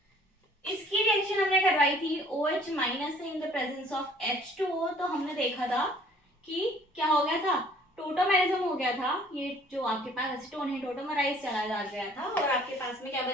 इसकी रिएक्शन हमने करवाई थी OH माइनस से in the presence of H2O। तो हमने देखा था कि क्या हो गया था, टोटोमेरिज्म हो गया था। ये जो आपके पास एसीटोन है टोटोमराइज चला जा गया था और आपके पास में क्या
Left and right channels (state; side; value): normal; both; correlation 0.56